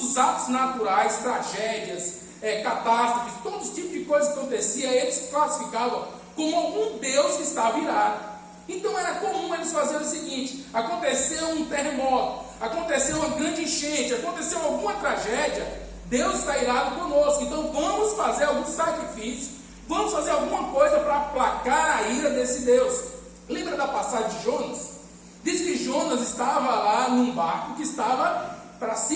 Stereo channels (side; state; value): both; identical; correlation 1.00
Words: os atos naturais, tragédias, catástrofes, todo tipo de coisa que acontecia, eles classificavam como algum Deus que estava irado. Então era comum eles fazerem o seguinte: aconteceu um terremoto, aconteceu uma grande enchente, aconteceu alguma tragédia, Deus está irado conosco, então vamos fazer algum sacrifício, vamos fazer alguma coisa para aplacar a ira desse Deus. Lembra da passagem de Jonas? Diz que Jonas estava lá num barco que estava para